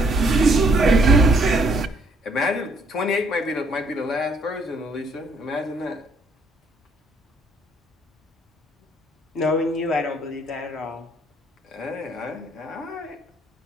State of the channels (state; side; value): normal; both; correlation 0.67